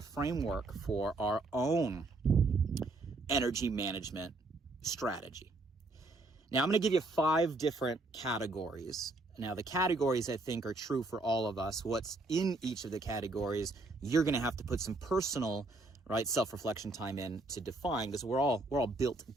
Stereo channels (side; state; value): left; quieter; 3.1 dB